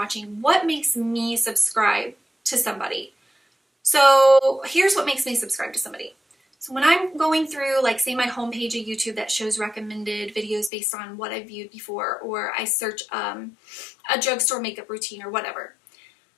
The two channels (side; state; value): right; drops out; at 10.7 s